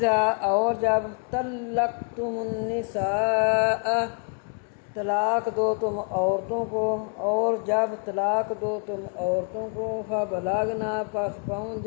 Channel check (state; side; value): quieter; right; 39.8 dB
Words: اور جب طلقتم النساء طلاق دو تم عورتوں کو، اور جب طلاق دو تم عورتوں کو، فبلغنا پس پہنچ